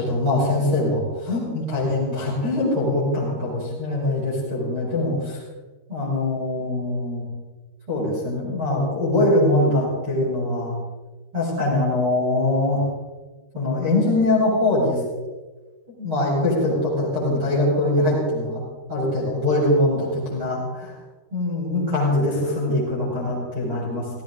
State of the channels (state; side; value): late; left; 13 ms